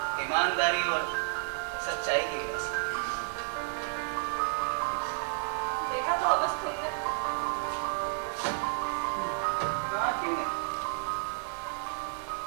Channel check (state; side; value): silent; left; 57 dB below the other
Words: ईमानदारी और सच्चाई की विरासत। देखा थॉमस तुमने? हाँ, क्यों नहीं।